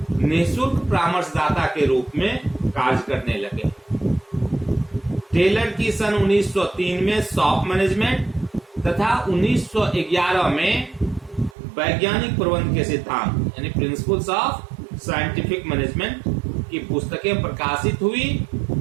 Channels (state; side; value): drops out; left; at 11.6 s